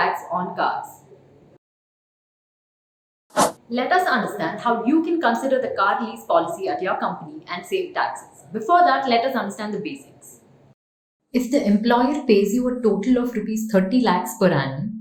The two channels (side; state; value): both; identical; correlation 1.00